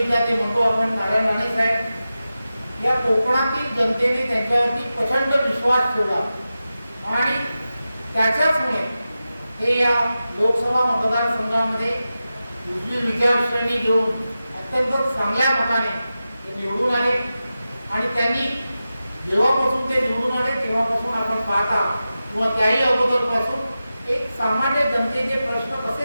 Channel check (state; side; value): inverted; both; correlation -0.93